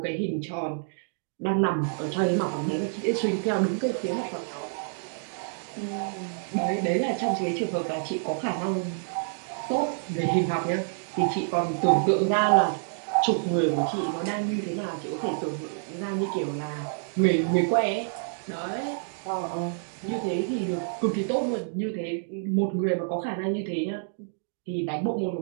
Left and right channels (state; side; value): silent; left; digital silence